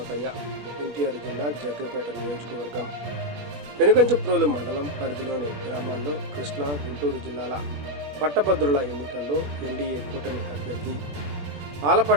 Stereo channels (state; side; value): late; left; 21 ms